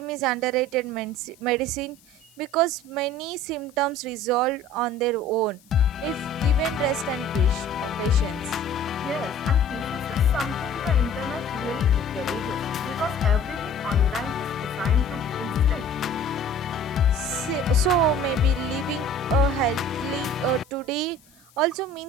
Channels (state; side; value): noise; left; hiss, 29 dB below the sound